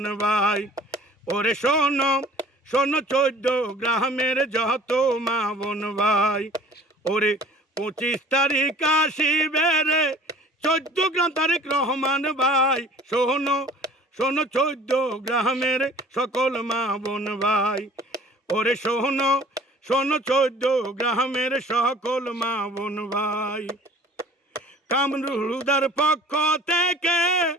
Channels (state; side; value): normal; both; correlation 0.49